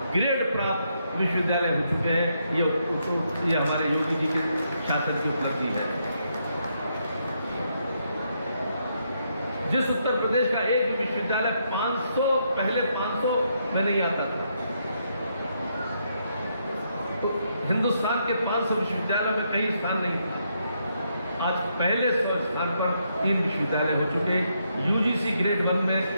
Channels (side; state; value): both; inverted; correlation -0.77